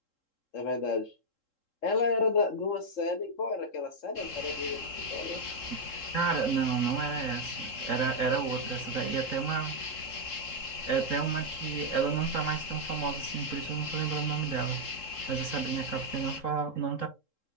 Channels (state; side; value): late; right; 3.7 ms